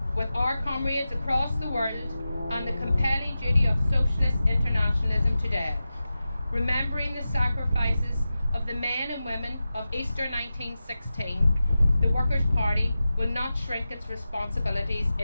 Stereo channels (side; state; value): both; inverted; correlation -0.93